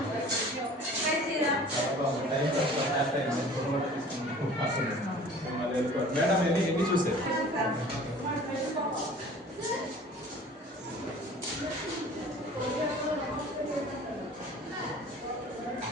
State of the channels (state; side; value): normal; both; correlation 0.46